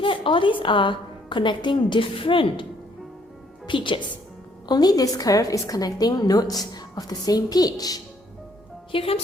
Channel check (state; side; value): normal; both; correlation 0.66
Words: that all these are connecting different pitches. Only this curve is connecting notes of the same pitch. Here